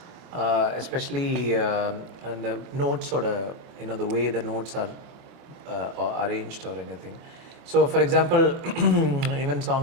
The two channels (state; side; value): late; left; 24 ms